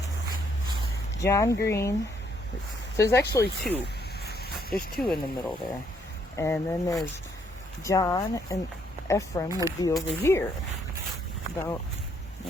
John Green. So there's actually 2. There's 2 in the middle there. And then there's John and Ephraim would be over here. About,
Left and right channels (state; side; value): normal; both; correlation 0.70